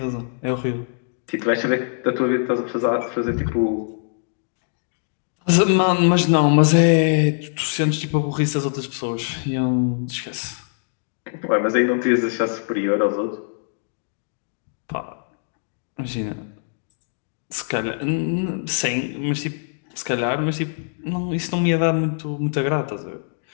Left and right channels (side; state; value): right; silent; digital silence